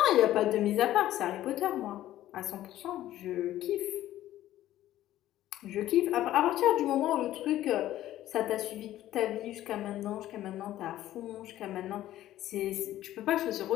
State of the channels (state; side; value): quieter; right; 13.7 dB